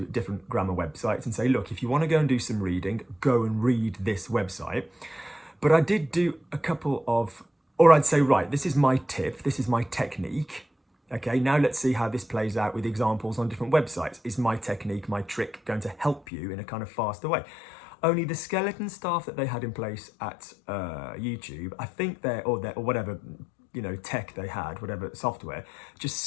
different grammar websites and say, look, if you want to go and do some reading, go and read this website. But I did do a couple of, or I'd say, right, this is my tip, this is my technique. Okay, now let's see how this plays out with examples on different websites. Is my technique, my trick going to help you in a kind of faster way? Only the skeleton staff that they had in place at YouTube, I think or whatever, you know, tech they had, whatever software, just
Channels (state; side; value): drops out; right; at 16.2 s